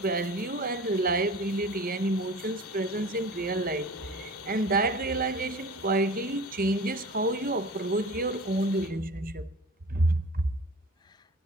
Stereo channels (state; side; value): normal; both; correlation 0.39